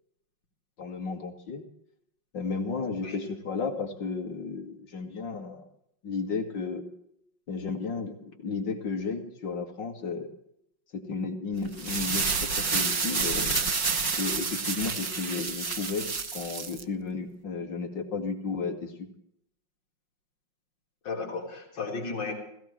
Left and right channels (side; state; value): right; late; 5.5 ms